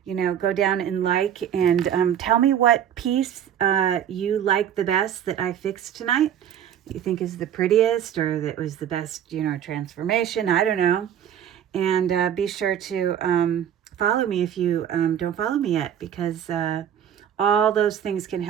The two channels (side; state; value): left; quieter; 9.6 dB